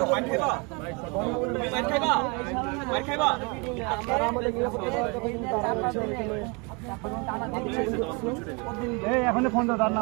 মার খাইবা এই এখন ফোন দাও তার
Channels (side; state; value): left; quieter; 30.8 dB